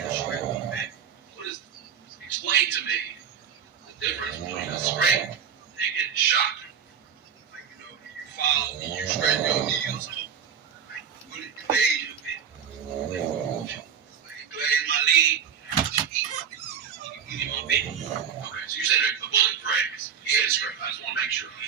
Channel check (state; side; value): quieter; left; 7.7 dB